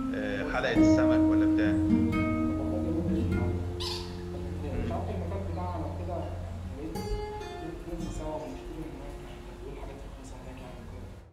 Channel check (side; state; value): both; identical; correlation 1.00